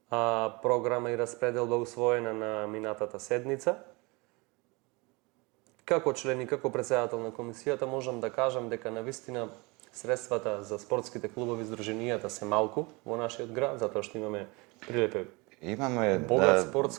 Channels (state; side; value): quieter; left; 26.4 dB